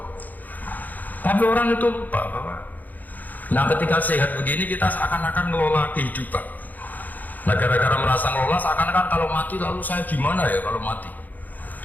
Tapi orang itu lupa, Bapak. Nah, ketika sehat begini kita seakan-akan ngelola kehidupan. Nah, gara-gara merasa ngelola seakan-akan kalau mati lalu saya gimana ya kalau mati.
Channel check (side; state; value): right; late; 0.082 ms